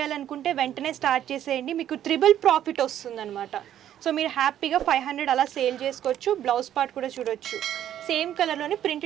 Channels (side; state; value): left; quieter; 11.1 dB